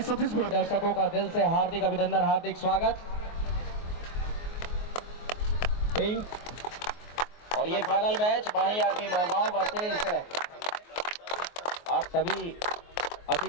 सतीश बोल। दर्शकों का दिल से हार्दिक अभिनंदन, हार्दिक स्वागत। पिंक और ये फाइनल मैच माही आर्मी मोहगांव वर्सेस आप सभी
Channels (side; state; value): right; late; 24 ms